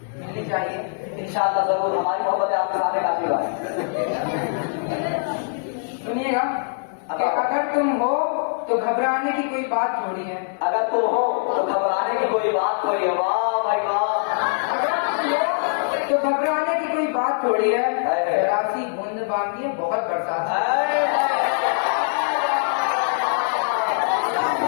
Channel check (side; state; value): right; silent; 64 dB below the other